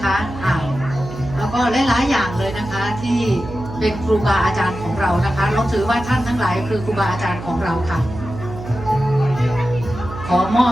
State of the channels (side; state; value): right; noise; hum, 11 dB below the sound